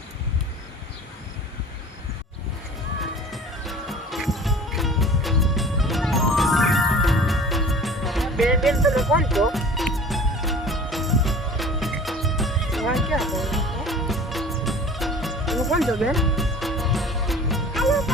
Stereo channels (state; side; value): normal; both; correlation 0.43